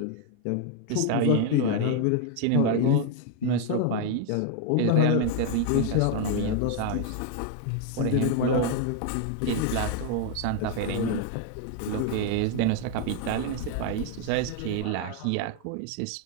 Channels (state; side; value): different; both; correlation 0.01